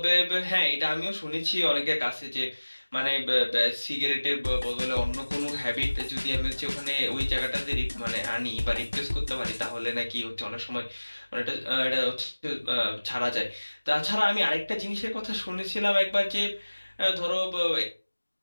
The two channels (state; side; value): inverted; both; correlation -1.00